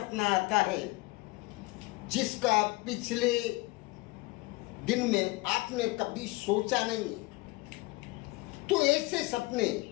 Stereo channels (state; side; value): quieter; right; 22.6 dB